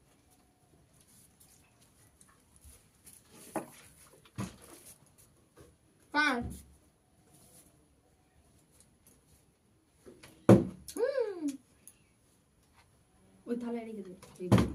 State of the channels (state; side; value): identical; both; correlation 1.00